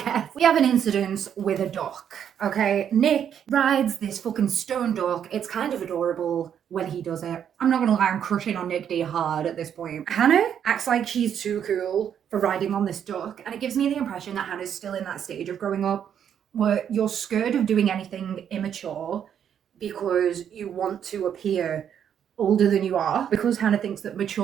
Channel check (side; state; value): left; quieter; 8.8 dB